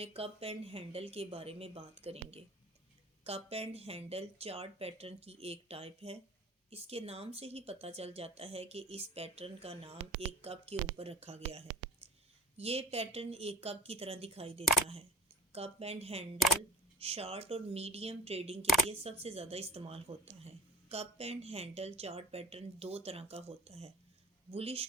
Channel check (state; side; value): normal; both; correlation 0.46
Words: कप एंड हैंडल के बारे में बात करेंगे। Cup and handle chart pattern की एक टाइप है। इसके नाम से ही पता चल जाता है कि इस पैटर्न का नाम एक कप के ऊपर रखा गया है। ये पैटर्न एक कप की तरह दिखाई देता है। कप एंड हैंडल शॉर्ट और मीडियम ट्रेडिंग के लिए सबसे ज़्यादा इस्तेमाल होता है। Cup and handle chart pattern दो तरह का होता है, bullish